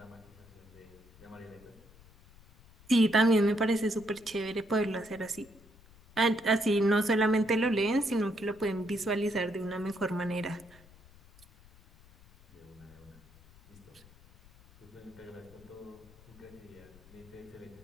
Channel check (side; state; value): left; noise; rumble, 24 dB below the sound